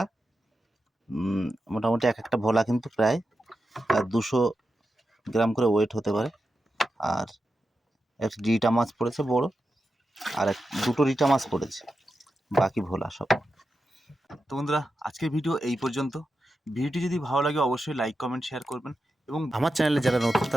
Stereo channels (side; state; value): both; normal; correlation 0.90